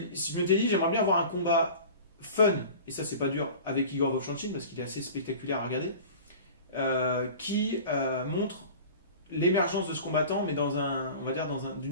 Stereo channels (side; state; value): both; inverted; correlation -0.39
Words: je m'étais dit, j'aimerais bien avoir un combat fun, et ça c'est pas dur, avec Igor Vovchanchyn parce qu'il est assez spectaculaire à regarder, qui montre l'émergence de ce combattant, mais on va dire